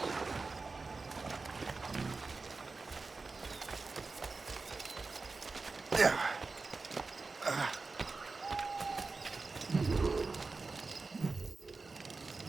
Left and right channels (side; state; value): left; quieter; 4.0 dB